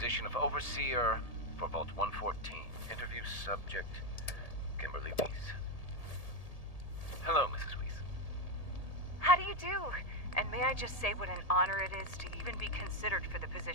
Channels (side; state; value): right; late; 1.8 ms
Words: of Overseer for Vault 114. Interview subject, Kimberly Weiss. Hello, Mrs. Weiss. How do you do? And may I just say what an honor it is to even be considered for the